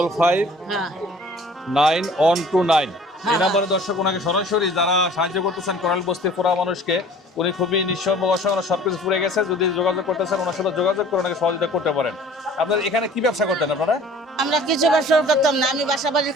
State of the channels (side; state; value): both; normal; correlation 0.49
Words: এই নাম্বারে দর্শক ওনাকে সরাসরি যারা সাহায্য করতেছেন কোরাল বস্তির পুরা মানুষকে, উনি খুবই নিঃস্ব অসহায়, সবকিছু পুড়ে গেছে। যদি যোগাযোগ করতেছেন ওনার সাথে যোগাযোগ করে ওনাকে সহযোগিতা করতে পারেন। আপনার এখানে কি ব্যবসা করতেন আপনারা? আমরা কিছু ব্যবসা করতাম না, আমি বাসা বাড়ির